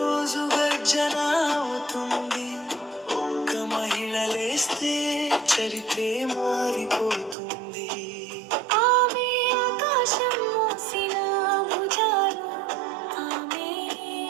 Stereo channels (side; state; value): left; drops out; at 7.4 s